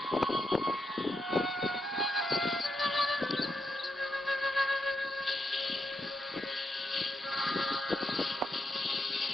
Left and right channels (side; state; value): both; normal; correlation 0.82